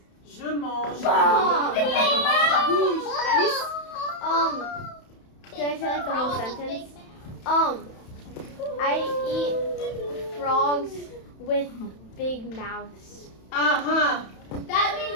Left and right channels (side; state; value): right; late; 31 ms